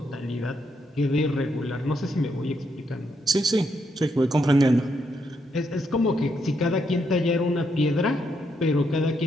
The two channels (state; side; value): normal; both; correlation 0.78